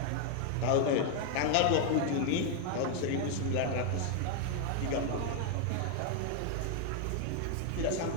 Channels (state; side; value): different; both; correlation 0.00